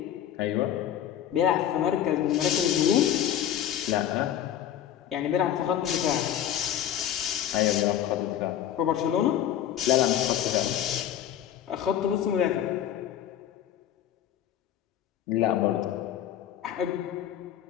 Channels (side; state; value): right; quieter; 10.7 dB